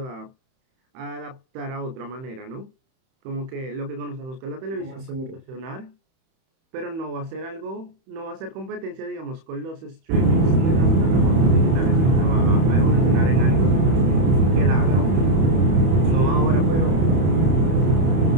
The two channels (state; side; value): late; left; 31 ms